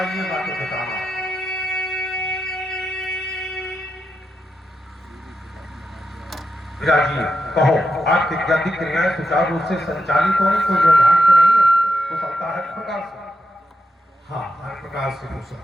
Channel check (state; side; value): normal; both; correlation 0.86